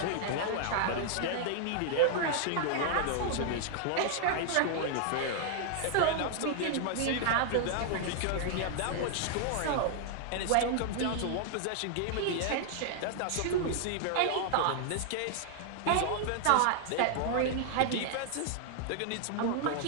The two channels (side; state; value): both; different; correlation 0.00